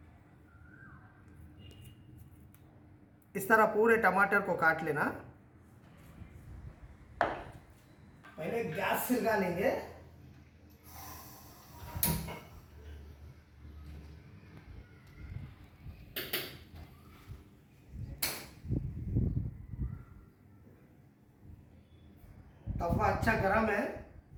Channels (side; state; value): both; identical; correlation 1.00